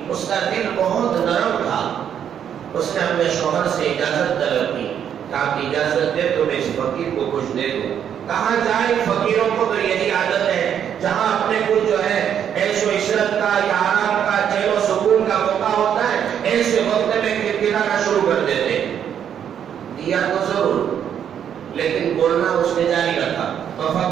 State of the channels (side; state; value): left; quieter; 8.9 dB